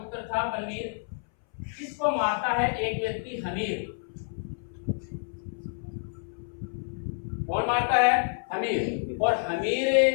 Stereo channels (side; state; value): right; silent; 59 dB below the other